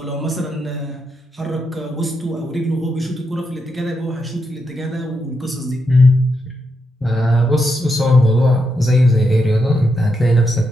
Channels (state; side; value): normal; both; correlation 0.82